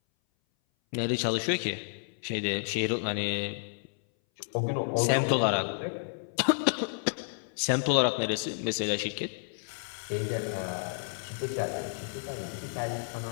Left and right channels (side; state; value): right; silent; 57 dB below the other